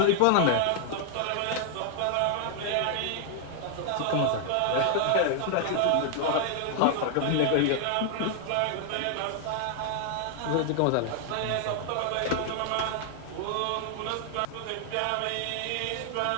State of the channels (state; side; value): different; both; correlation 0.00